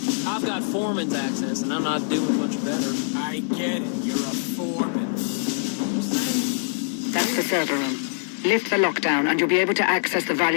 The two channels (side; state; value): right; silent; digital silence